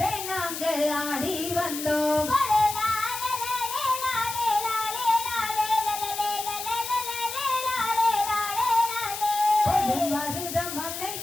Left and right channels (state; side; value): noise; left; hiss, 7 dB below the sound